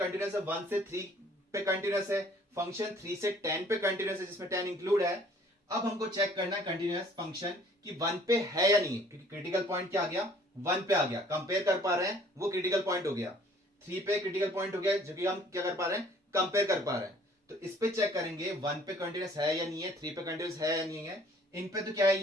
है 1 से 3 पे कंटिन्यूअस है, फंक्शन 3 से 10 पे कंटिन्यूअस है, जिसमें 10 इंक्लूड है। अब हमको चेक करना है कंटिन्यूअस फंक्शन कि 1 पे है या नहीं, क्योंकि क्रिटिकल पॉइंट क्या आ गया, 1 पे आ गया। कंपेयर कर पा रहे हैं, वो क्रिटिकल पॉइंट हो गया। 3 पे क्रिटिकल पॉइंट हो गया, जो कि हम क्या कर पा रहे हैं, कंपेयर कर पा रहे हैं। तो इस पे चेक करेंगे 1 पे कंटिन्यूअस है या नहीं है, 3 पे कंटिन्यूअस है या नहीं है। इन पे तो क्या है,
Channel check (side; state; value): both; normal; correlation 0.56